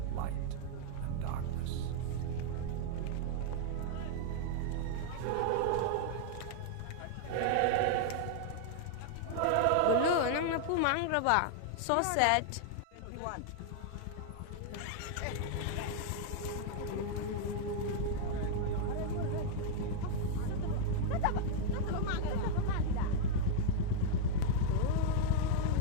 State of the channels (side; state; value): both; different; correlation -0.01